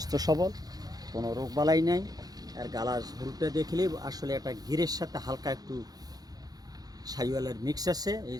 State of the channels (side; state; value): left; late; 0.19 ms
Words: সবল, কোনো রোগবালাই নাই। আর গালার ঝোলটা দেখলে আসলে একটা গিরের সাথে হালকা একটু শাইওয়ালের মিক্স আছে। এই